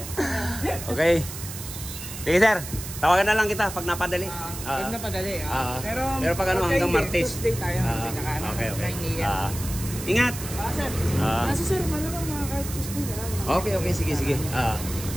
Okay. Sige sir, tawagan na lang kita pag napadali. Pag napadali. Pero pag ano hanggang Martes. Tuesday tayo. Okay. Ingat. Sir. Kasi sir, malamang kahit Tuesday na lang. Okay, sige.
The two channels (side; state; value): right; noise; hiss, 10 dB below the sound